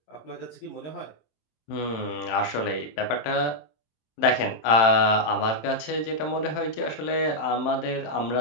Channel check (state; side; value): late; right; 27 ms